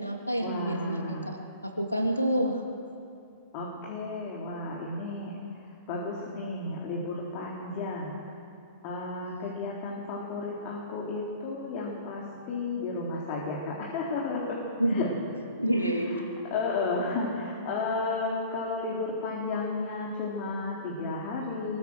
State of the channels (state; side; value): inverted; both; correlation -0.45